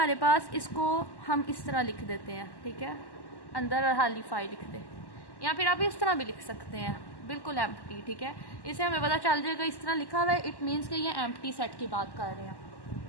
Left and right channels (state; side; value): late; right; 1.1 ms